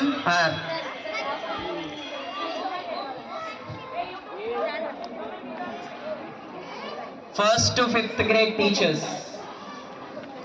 our first to fifth grade teachers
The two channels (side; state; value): both; identical; correlation 1.00